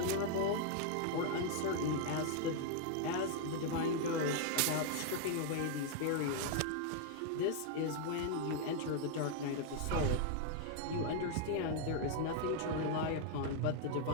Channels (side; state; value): both; different; correlation 0.00